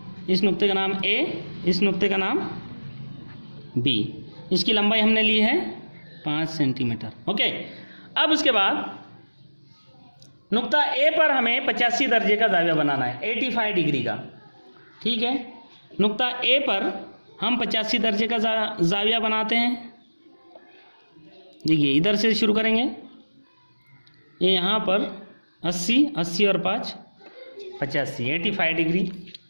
इस नुक्ते का नाम A, इस नुक्ते का नाम B। इसकी लंबाई हमने ली है 5 सेंटीमीटर। ओके, अब उसके बाद नुक्ता A पर हमें 85 दर्जे का ज़ाविया बनाना है, 85 डिग्री का। ठीक है, नुक्ता A पर हम 85 दर्जे का ज़ाविया बनाते हैं। देखिए इधर से शुरू करेंगे, ये यहाँ पर 80 और 5 85, 85 डिग्री।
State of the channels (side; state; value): both; inverted; correlation -1.00